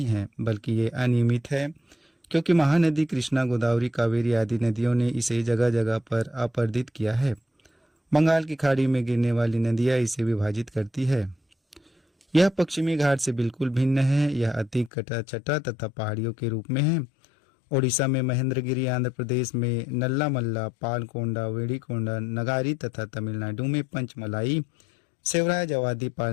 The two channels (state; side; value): drops out; right; at 14.9 s